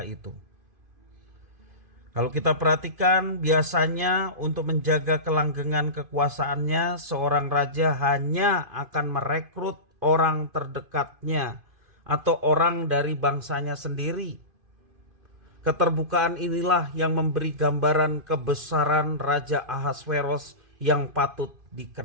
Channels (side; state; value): left; late; 2.5 ms